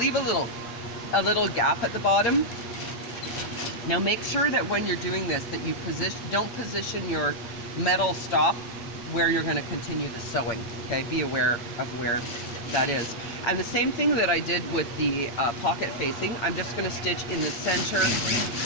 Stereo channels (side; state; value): right; late; 8.7 ms